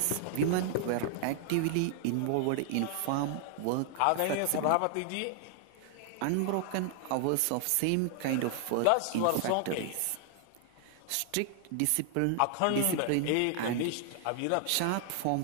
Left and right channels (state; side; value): different; both; correlation 0.00